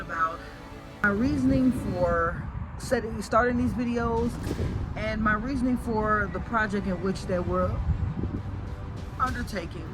my reasoning for starting these videos and my reasoning for the project in which they were undertaking,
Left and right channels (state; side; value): identical; both; correlation 1.00